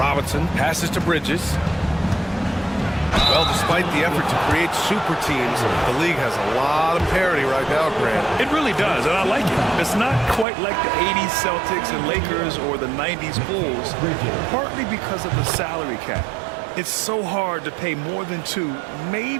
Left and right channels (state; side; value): drops out; left; at 10.5 s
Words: passes to Bridges. Well, despite the effort to create super teams, the league has a lot of parity right now, Grant. It really does, and I like it. It's not quite like the 80s Celtics and Lakers or the 90s Bulls, partly because of the salary cap. It's so hard to pay more than 2,